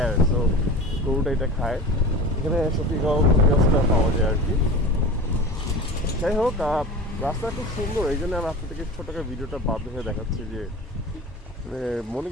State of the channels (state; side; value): normal; both; correlation 0.34